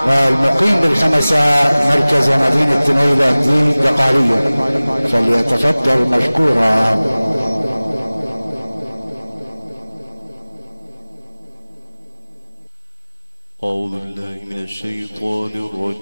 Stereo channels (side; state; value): both; inverted; correlation -0.99